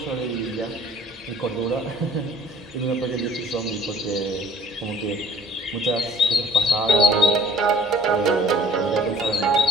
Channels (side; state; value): both; normal; correlation 0.53